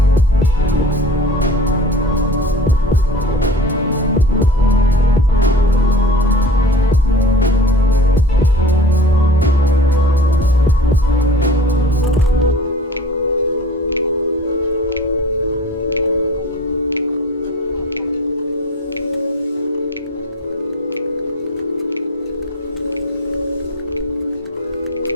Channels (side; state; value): both; normal; correlation 0.40